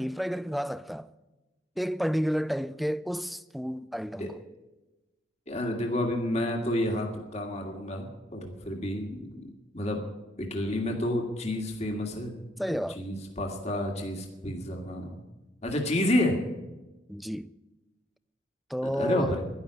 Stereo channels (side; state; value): both; normal; correlation 0.73